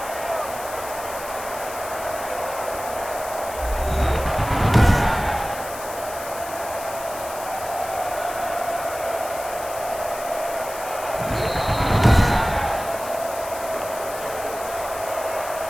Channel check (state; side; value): noise; left; hiss, 12 dB below the sound